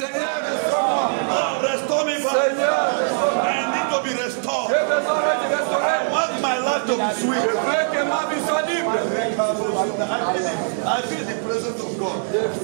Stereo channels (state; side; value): silent; left; digital silence